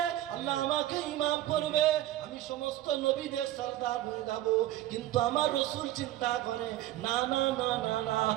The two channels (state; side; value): quieter; left; 14.2 dB